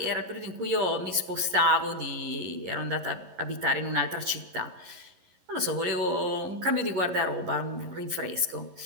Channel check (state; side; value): late; left; 11 ms